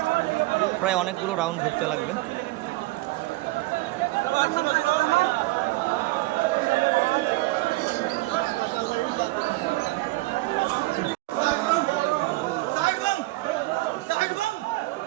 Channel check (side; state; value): left; quieter; 20.7 dB